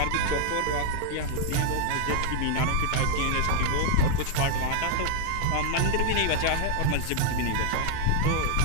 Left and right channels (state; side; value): different; both; correlation 0.00